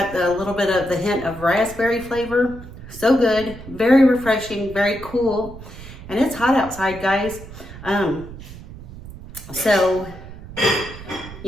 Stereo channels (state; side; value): noise; right; rumble, 14 dB below the sound